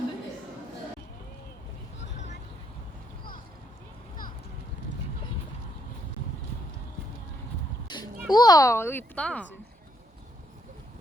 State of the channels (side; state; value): both; normal; correlation 0.74